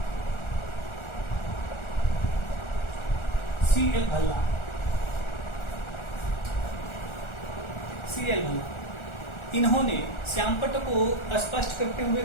C.L. भल्ला। इन्होंने श्यामपट्ट को स्पष्ट करते हुए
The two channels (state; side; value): late; right; 1.4 ms